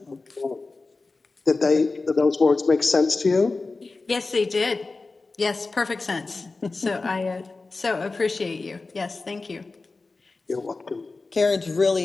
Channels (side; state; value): right; quieter; 3.7 dB